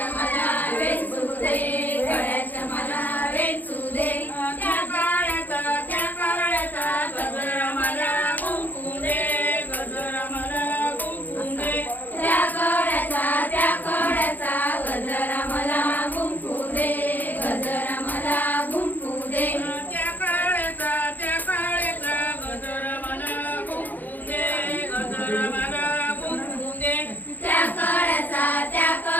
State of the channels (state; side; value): late; right; 0.085 ms